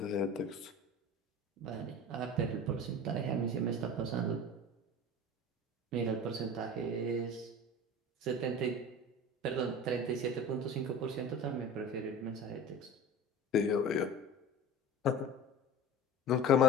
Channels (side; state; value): both; normal; correlation 0.35